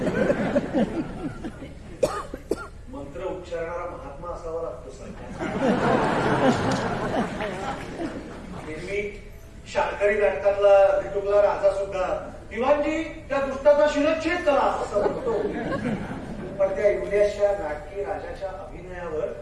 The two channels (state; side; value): identical; both; correlation 1.00